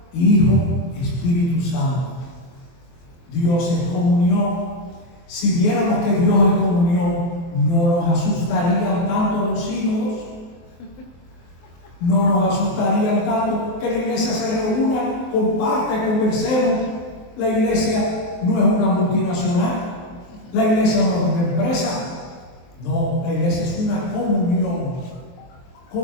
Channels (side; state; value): right; late; 23 ms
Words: Hijo, Espíritu Santo. Dios es comunión. Si viéramos que Dios es comunión, no nos asustarían tanto los hijos, no nos asustarían tanto que la iglesia se reúna, comparte, conversemos. La iglesia no es una multinacional, la iglesia no es una empresa, no, la iglesia es una